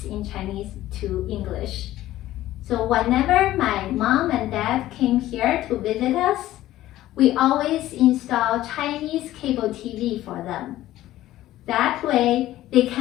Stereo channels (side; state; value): right; quieter; 14.7 dB